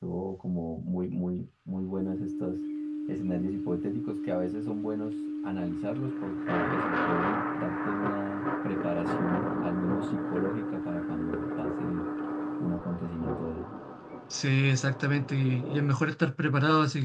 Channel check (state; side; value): identical; both; correlation 1.00